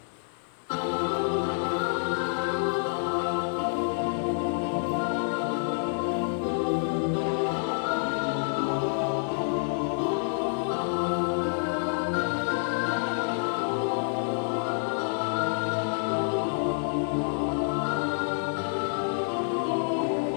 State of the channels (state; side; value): silent; right; digital silence